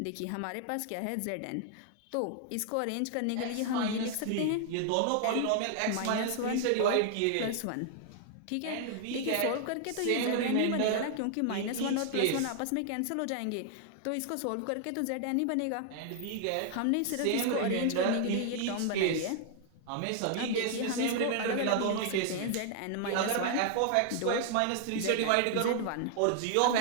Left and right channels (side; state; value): both; different; correlation 0.00